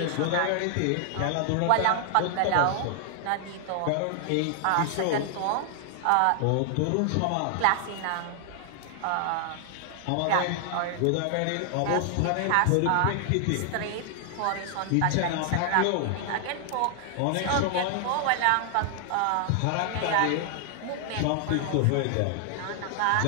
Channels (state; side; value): different; both; correlation 0.00